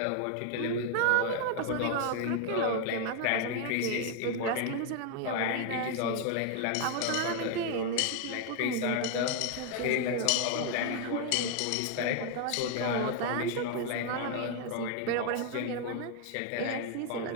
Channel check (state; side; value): different; both; correlation 0.01